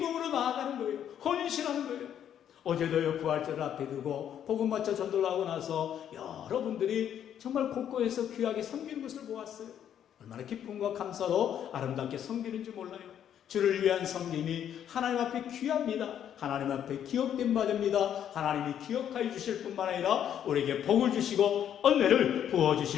나아가는 거예요. 헌신하는 거예요. 어제도요 부활절을 앞에 두고 복음 맞춰 전도를 하고 나서 여러분들이 정말 곳곳에서 귀하게 섬기는 것을 보았어요. 얼마나 기쁨과 감사로 아름답게 섬기는지 몰라요. 주를 위한 섬김이 하나님 앞에 귀합니다. 하나님 앞에 기억된 바 됩니다. 하나님이 기억하여 주실 뿐만 아니라 우리에게 복을 주시고 은혜를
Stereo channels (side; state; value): right; quieter; 9.7 dB